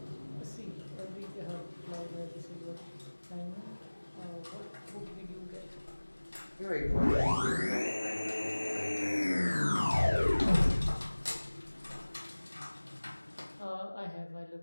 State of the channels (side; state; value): both; inverted; correlation -1.00